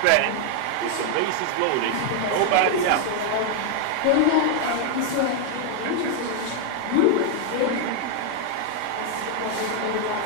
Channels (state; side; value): different; both; correlation 0.00